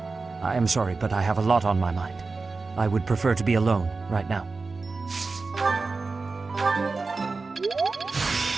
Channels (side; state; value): left; quieter; 4.0 dB